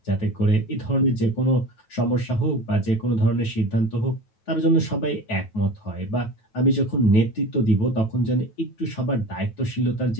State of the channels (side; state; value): right; late; 9.3 ms